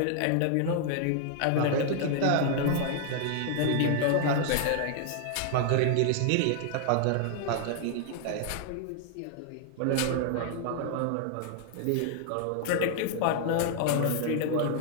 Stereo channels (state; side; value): different; both; correlation 0.00